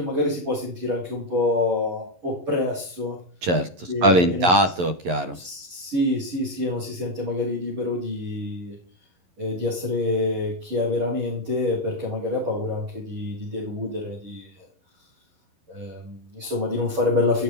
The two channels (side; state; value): left; late; 11 ms